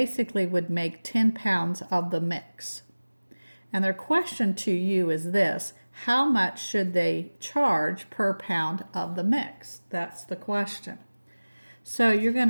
would make 10 pounds of the mix. And their question to you is this: how much should they charge per pound of the mix? That's the question. So you're going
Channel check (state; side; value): inverted; both; correlation -1.00